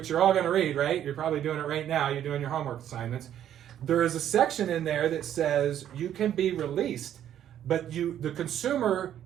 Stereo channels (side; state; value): left; quieter; 10.7 dB